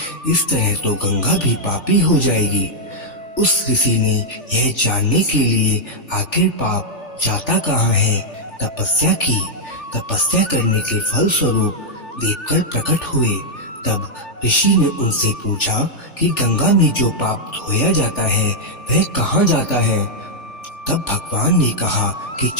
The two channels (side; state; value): right; late; 3.4 ms